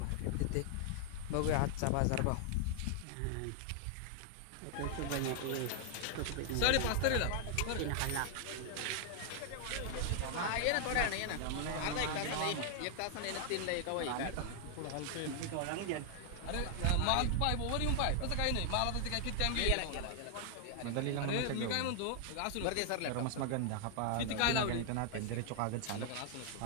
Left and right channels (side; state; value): both; different; correlation 0.00